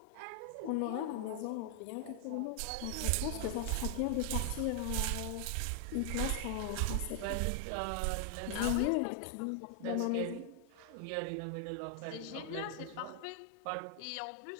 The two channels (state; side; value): different; both; correlation 0.00